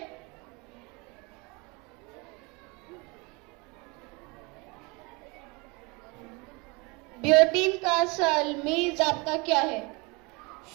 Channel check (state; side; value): quieter; left; 28.0 dB